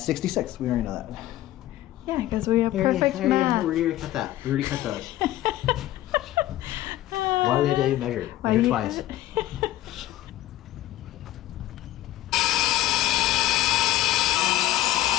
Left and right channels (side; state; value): right; quieter; 15.0 dB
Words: We already know that. Yeah, because we have perfect math. We already cut that. We already cut those. Why do we have to measure? Measure twice.